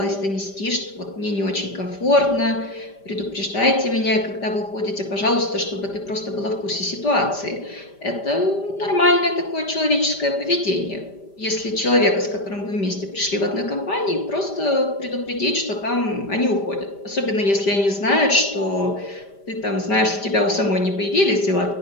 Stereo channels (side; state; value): right; late; 5.1 ms